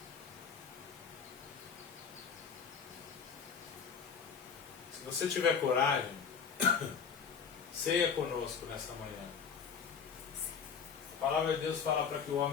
Se você tiver coragem, ceia conosco nessa manhã. A palavra de Deus fala para que o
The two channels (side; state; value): right; quieter; 6.5 dB